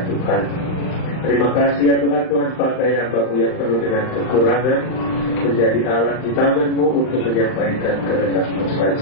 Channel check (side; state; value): right; late; 39 ms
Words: Tuhan. Terima kasih ya Tuhan, Tuhan pakai hamba-Mu yang penuh dengan kekurangan menjadi alat di tangan-Mu untuk menyampaikan kehendak-Mu